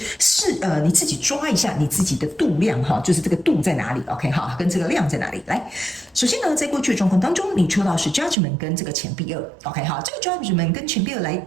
你自己抓一下你自己的度量哈，就是这个度在哪里 ？OK 哈，跟这个量在哪里？来，首先呢，在过去的状况当中，你抽到是 Judgment 跟这个钱币2 ，OK 哈，这个 Judgment 跟钱币2来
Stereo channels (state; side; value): drops out; left; at 8.3 s